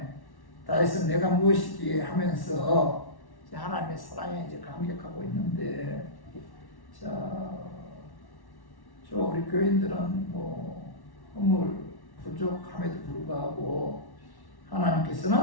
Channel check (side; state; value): right; late; 1.1 ms